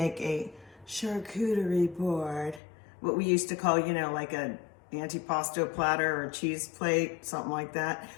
a charcuterie board, what we used to call, you know, like a antipasto platter or cheese plate, something like that.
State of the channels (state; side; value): drops out; right; at 2.6 s